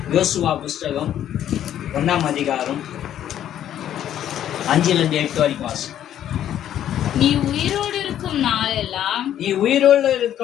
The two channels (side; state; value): right; quieter; 10.9 dB